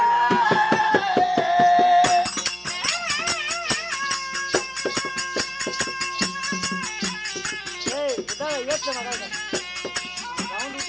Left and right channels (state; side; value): noise; right; hum, 28 dB below the sound